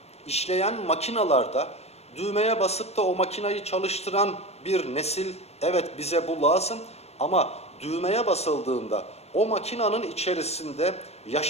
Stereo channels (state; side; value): late; right; 0.31 ms